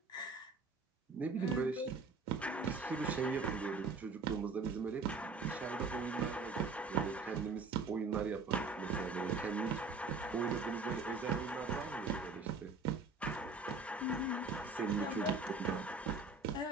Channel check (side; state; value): left; quieter; 4.0 dB